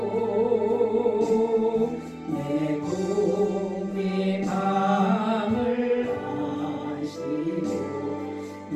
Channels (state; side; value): identical; both; correlation 1.00